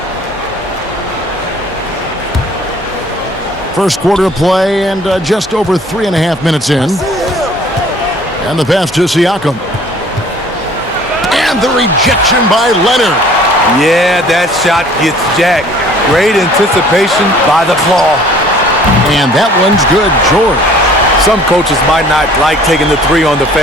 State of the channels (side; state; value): both; normal; correlation 0.53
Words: First quarter of play, and just over 3.5 minutes in. And the pass to Siakam. And the rejection by Leonard. Yeah, that shot gets jacked. Great anticipation by the claw. And that one's good, George. Some coaches might not like taking the 3 on the